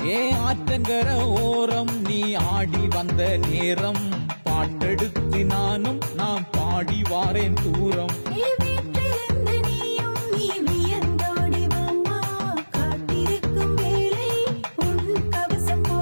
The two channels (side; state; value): both; inverted; correlation -1.00